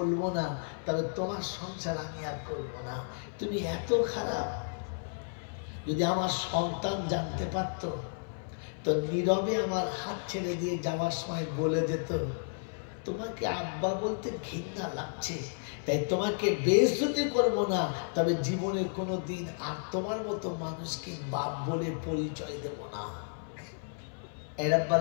না, তবে তোমার সংসার আমি আর করবো না, তুমি এত খারাপ। যদি আমার সন্তান জানতে পারত তো নীরবে আমার হাত ছেড়ে দিয়ে যাওয়ার সময় বলে যেত, তোমাকে আব্বা বলতে ঘৃণা লাগছে, তাই তোমাকে বেইজ্জতি করবো না, তবে জীবনে কোনো দিন আর তোমার মতো মানুষকে বাপ বলে পরিচয় দেব না। এ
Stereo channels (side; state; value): right; silent; 56 dB below the other